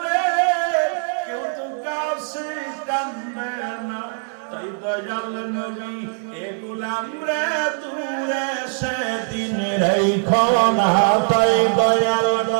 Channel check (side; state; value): left; silent; 65 dB below the other